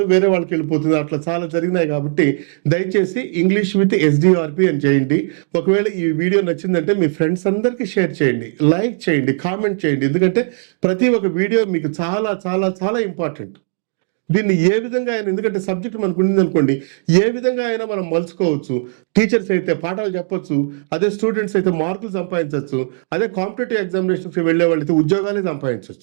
వేరే వాళ్ళకి వెళ్ళిపోతుంది. అట్లా చాలా జరిగినాయి. కాబట్టి దయచేసి ఇంగ్లీష్ విత్ SDRP అని చేయండి. ఒకవేళ ఈ వీడియో నచ్చిందంటే మీ ఫ్రెండ్స్ అందరికీ షేర్ చేయండి, లైక్ చేయండి, కామెంట్ చేయండి. ఎందుకంటే ప్రతి ఒక్క వీడియో మీకు చాలా చాలా చాలా ఇంపార్టెంట్. దీన్ని ఏ విధంగా అయినా, ఎందుకంటే సబ్జెక్ట్ మనకు ఉంది అనుకోండి, ఏ విధంగా అయినా మనం మలుచుకోవచ్చు. టీచర్స్ అయితే పాఠాలు చెప్పొచ్చు, అదే స్టూడెంట్స్ అయితే మార్కులు సంపాదించవచ్చు, అదే కాంపిటేటివ్ ఎగ్జామినేషన్స్కి వెళ్ళే వాళ్ళైతే ఉద్యోగాలే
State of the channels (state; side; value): silent; left; digital silence